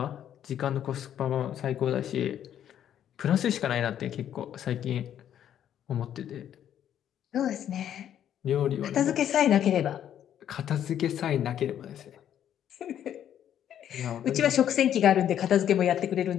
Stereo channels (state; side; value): quieter; right; 10.2 dB